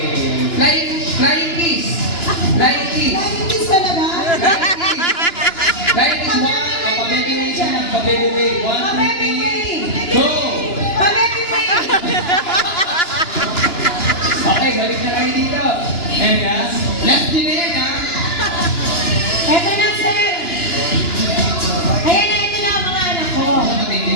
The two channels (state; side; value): late; right; 2.9 ms